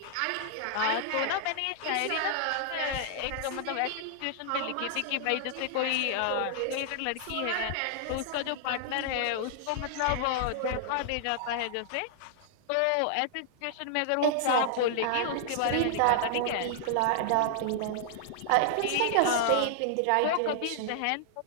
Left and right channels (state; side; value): different; both; correlation 0.00